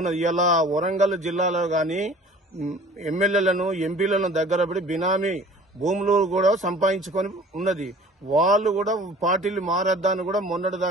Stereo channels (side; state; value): both; normal; correlation 0.47